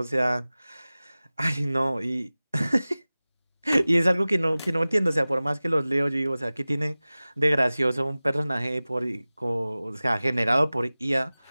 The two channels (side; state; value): both; inverted; correlation -0.98